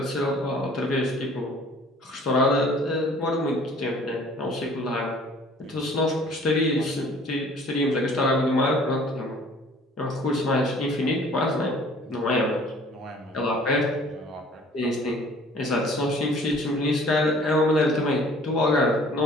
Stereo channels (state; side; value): normal; both; correlation 0.52